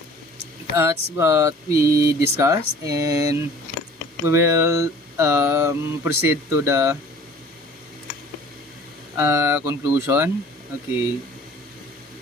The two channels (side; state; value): both; normal; correlation 0.48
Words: that's what we discussed, and we will proceed to the conclusion. Okay.